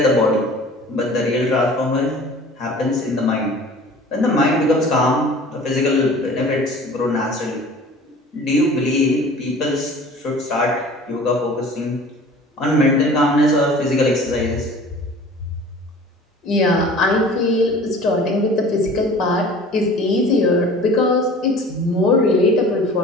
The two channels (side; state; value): both; normal; correlation 0.44